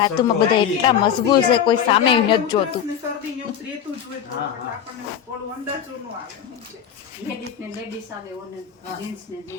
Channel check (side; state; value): right; quieter; 8.7 dB